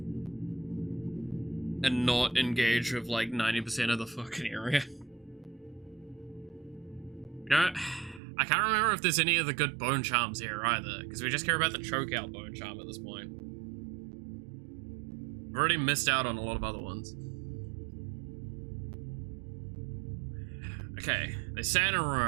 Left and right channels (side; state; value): left; drops out; at 8.2 s